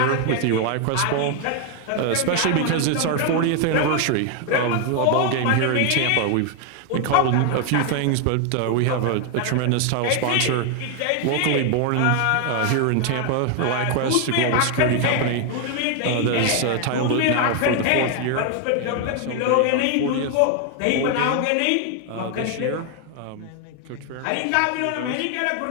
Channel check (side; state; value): both; different; correlation 0.00